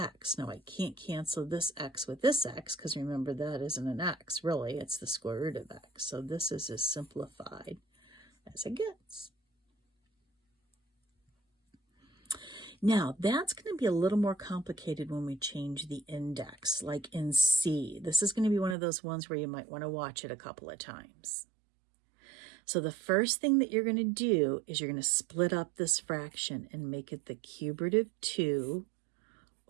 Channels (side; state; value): left; drops out; at 18.8 s